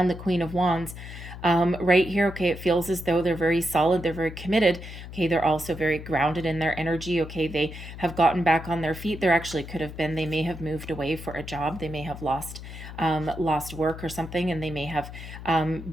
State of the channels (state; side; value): noise; left; hum, 12 dB below the sound